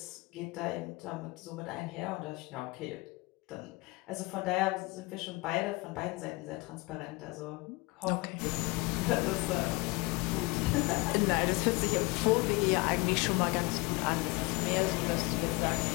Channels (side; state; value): right; quieter; 24.6 dB